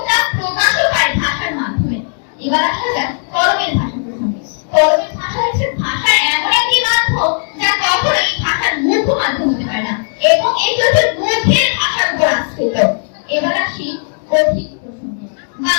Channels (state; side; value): silent; right; 70 dB below the other